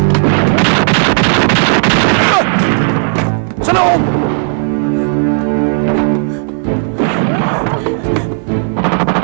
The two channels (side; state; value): left; silent; 67 dB below the other